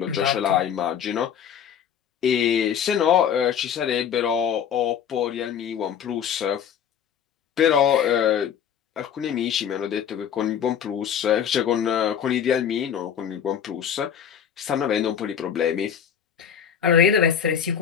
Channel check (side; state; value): right; quieter; 8.3 dB